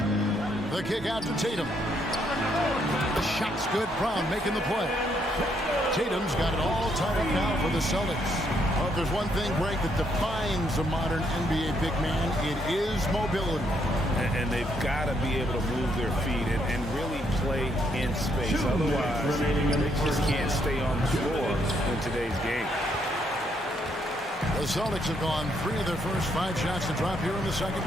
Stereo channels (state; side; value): normal; both; correlation 0.73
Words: The kick out to Tatum. The shot's good. Brown making the play. Tatum's got it all tied up now for the Celtics. Well, if there's one thing, Greg, that defines a modern NBA big man, it is mobility. And they've got to be able to move their feet and really play in space. Otherwise, they just can't stay on the floor in today's game. The Celtics have gone 3 of their first 5 shots to drop here in the second